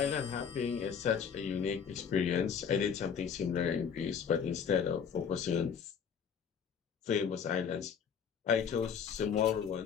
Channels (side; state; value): right; quieter; 7.2 dB